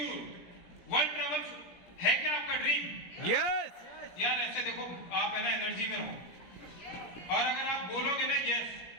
world travel है क्या आपका ड्रीम? यस यार ऐसे देखो, आप है ना एनर्जी में रहो, और अगर आप बोलोगे ना यस,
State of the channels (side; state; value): right; late; 17 ms